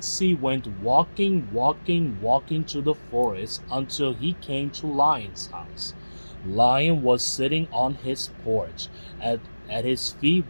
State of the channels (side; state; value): both; inverted; correlation -1.00